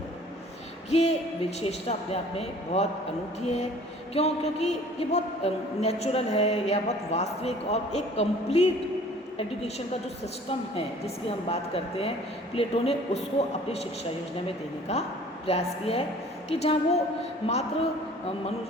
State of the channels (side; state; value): both; normal; correlation 0.50